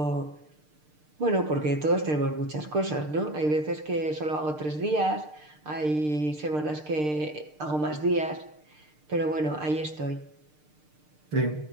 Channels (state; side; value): late; left; 6.6 ms